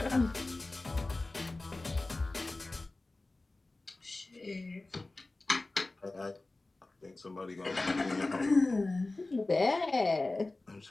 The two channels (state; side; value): quieter; right; 3.1 dB